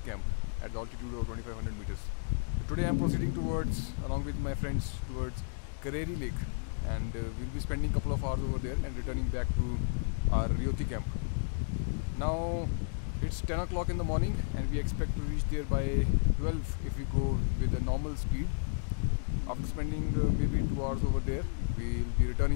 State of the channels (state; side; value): silent; right; digital silence